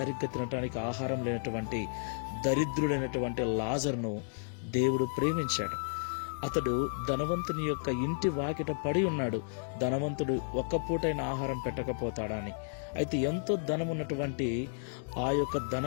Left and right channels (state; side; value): silent; right; digital silence